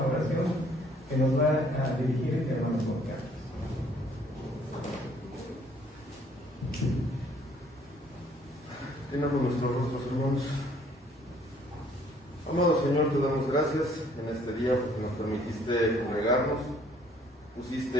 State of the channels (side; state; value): both; normal; correlation 0.61